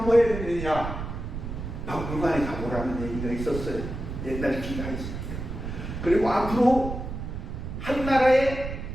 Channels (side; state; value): right; noise; rumble, 7 dB below the sound